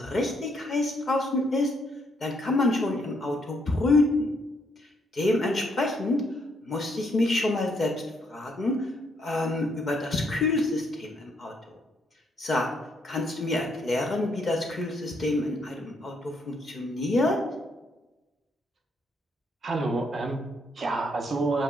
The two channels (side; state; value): both; normal; correlation 0.73